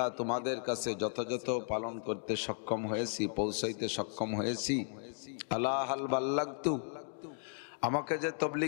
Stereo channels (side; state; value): right; silent; 54 dB below the other